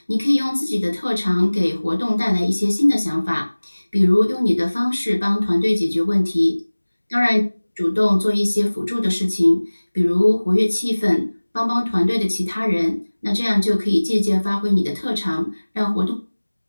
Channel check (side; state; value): both; inverted; correlation -1.00